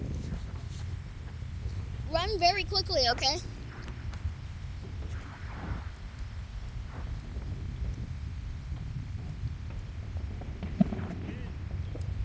Run very quickly, okay?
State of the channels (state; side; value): identical; both; correlation 1.00